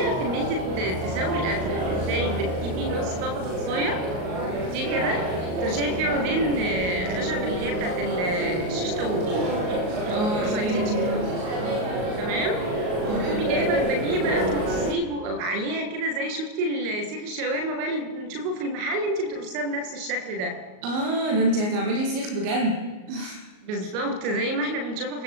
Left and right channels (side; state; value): left; late; 38 ms